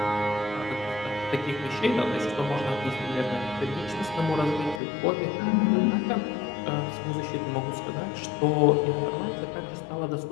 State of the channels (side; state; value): right; drops out; at 4.8 s